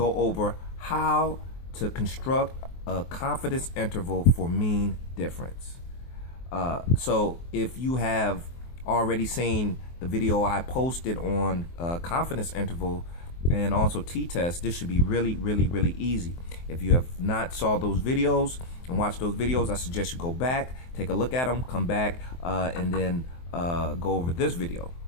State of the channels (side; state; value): right; late; 23 ms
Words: over how to construct a confidence interval for mean difference. So if you have already seen the video I posted on confidence interval and also t-test, this should be really easy. If you have not saw those videos and watched those videos, I suggest you go back, take a look at them, come back, and then go over this video.